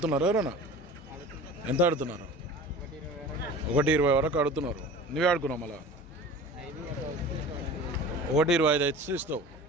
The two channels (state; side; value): normal; both; correlation 0.38